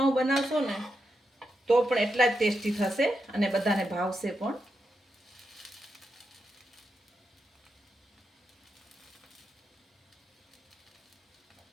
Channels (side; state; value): both; normal; correlation 0.86